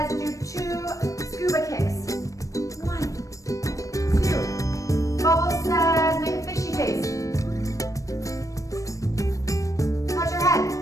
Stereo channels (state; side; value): late; right; 0.16 ms